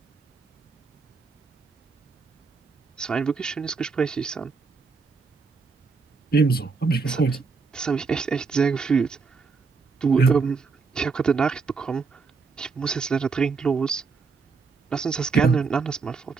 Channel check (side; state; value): left; quieter; 4.8 dB